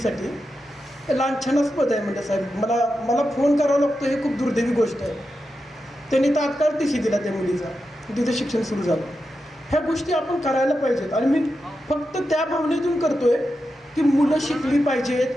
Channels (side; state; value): both; normal; correlation 0.89